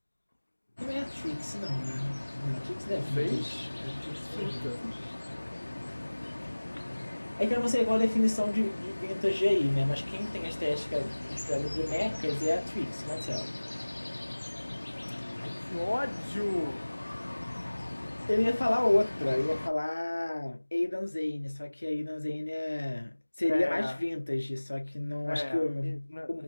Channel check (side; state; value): both; inverted; correlation -1.00